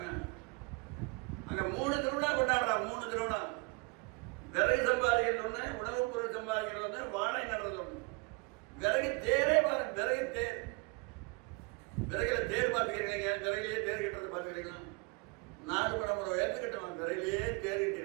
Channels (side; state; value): left; quieter; 28.5 dB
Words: அங்க 3 திருவிழா கொண்டாடுறான். 3 திருவிழா. விறகு சம்பாதிக்கிறது ஒண்ணு, உணவுப் பொருள் சம்பாதிக்கிறது ஒண்ணு, வாழை நடுறது ஒண்ணு. விறகு தேரே பாருங்க, விறகு தேர். விறகுல தேர் பார்த்துக்கிறீங்க, விறகுலேயே தேர் கட்டுறது பார்த்துக்கிறீங்களா? 4 மணி நேரம் உயர்ந்து கட்டுவாங்க, விறகுலேயே தேர்